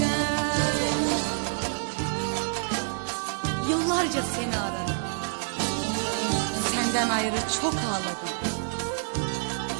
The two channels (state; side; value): silent; left; 60 dB below the other